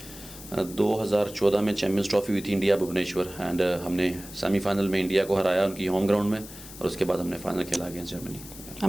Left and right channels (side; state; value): left; noise; hiss, 16 dB below the sound